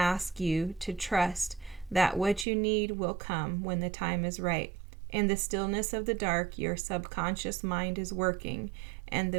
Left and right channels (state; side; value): drops out; left; at 2.5 s